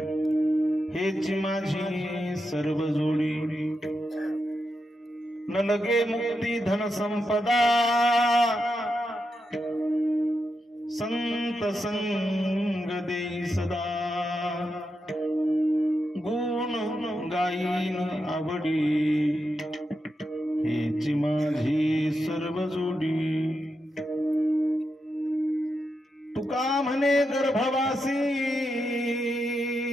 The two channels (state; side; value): normal; both; correlation 0.86